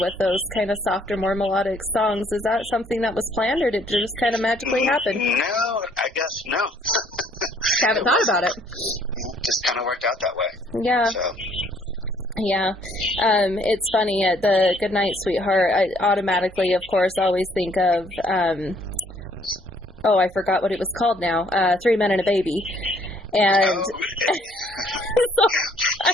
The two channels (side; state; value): both; normal; correlation 0.63